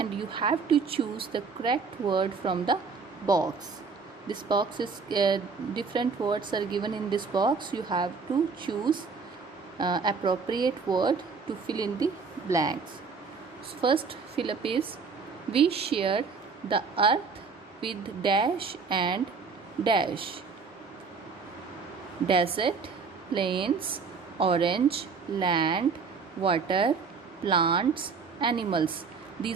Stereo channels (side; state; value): left; quieter; 5.1 dB